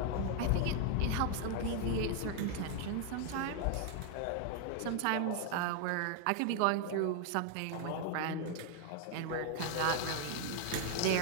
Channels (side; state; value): both; different; correlation 0.00